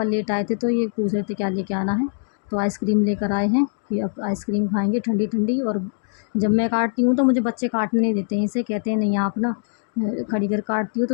लेट आए थे तो ये पूछ रहे थे क्या लेके आना है। तो आइसक्रीम लेकर आए हैं कि अब आइसक्रीम खाएंगे ठंडी ठंडी। और जब मैं काटती हूँ तो मुझे बच्चे काटने नहीं देते हैं, इसे कहते हैं नहीं आप ना खड़ी कर काटती हो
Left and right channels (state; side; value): silent; right; digital silence